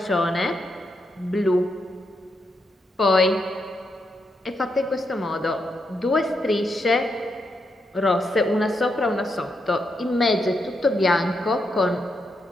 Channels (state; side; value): normal; both; correlation 0.82